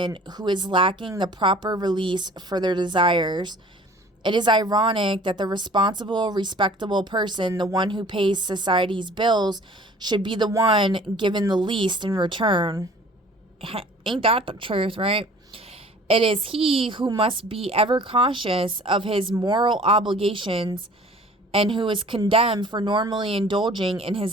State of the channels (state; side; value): normal; both; correlation 0.49